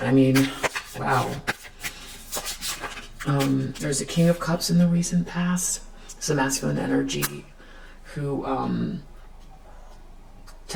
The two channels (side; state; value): both; identical; correlation 1.00